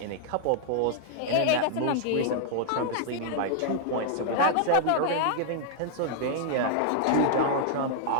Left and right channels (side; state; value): both; different; correlation -0.01